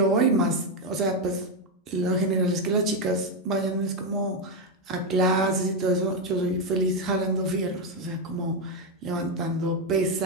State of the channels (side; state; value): both; normal; correlation 0.05